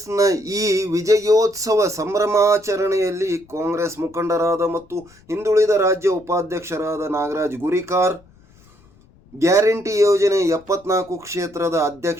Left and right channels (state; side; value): noise; left; rumble, 28 dB below the sound